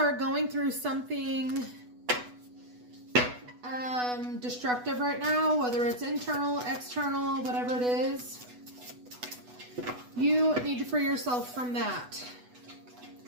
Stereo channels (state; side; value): late; left; 8.1 ms